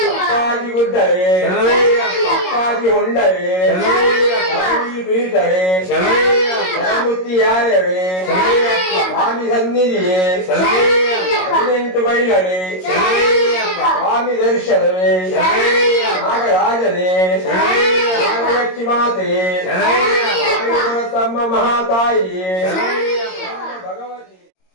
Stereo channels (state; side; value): late; right; 22 ms